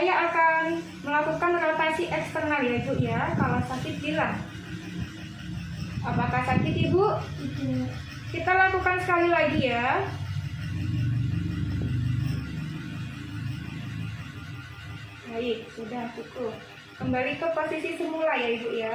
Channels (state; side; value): identical; both; correlation 1.00